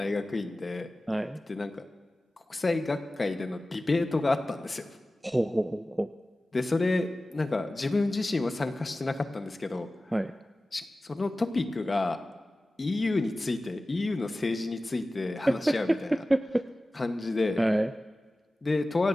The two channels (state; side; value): normal; both; correlation 0.96